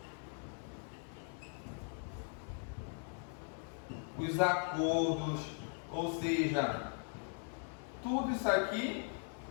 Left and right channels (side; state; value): right; silent; 51 dB below the other